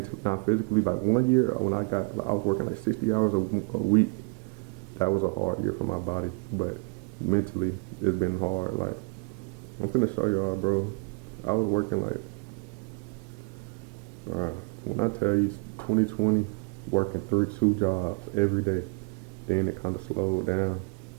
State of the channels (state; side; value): quieter; left; 33.2 dB